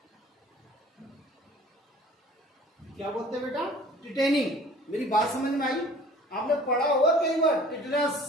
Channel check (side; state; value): both; normal; correlation 0.48